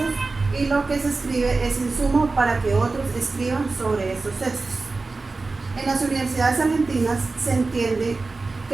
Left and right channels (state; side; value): quieter; left; 3.7 dB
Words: y lo que se escribe es insumo para que otros escriban sobre estos textos. En las universidades argentinas se entiende que